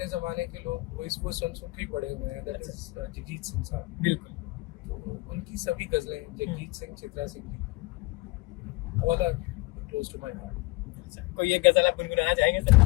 ज़माने के लोग वो इसको सुन के ही बड़े हुए हैं, दैट इज जगजीत सिंह साहब। बिल्कुल, तो उनकी सभी गज़लें, Jagjit Singh, Chitra Singh ji, all are close to my heart. कोई एक गजल आप गुनगुनाना चाहेंगे सर?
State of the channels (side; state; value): right; quieter; 22.6 dB